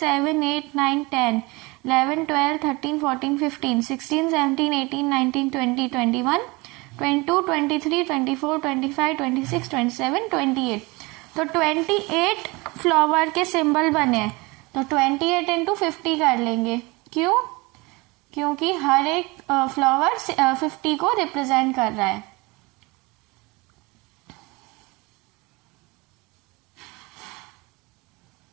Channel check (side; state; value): left; quieter; 24.8 dB